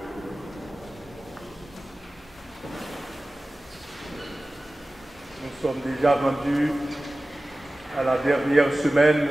Nous sommes déjà rendus à la dernière semaine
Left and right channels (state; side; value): normal; both; correlation 0.96